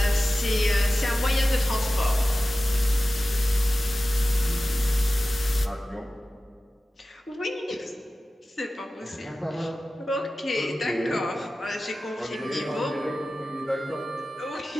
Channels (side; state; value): both; normal; correlation 0.95